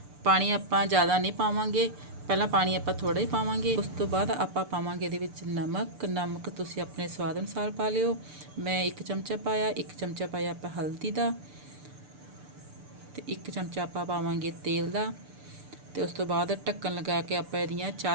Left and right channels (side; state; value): left; late; 6.8 ms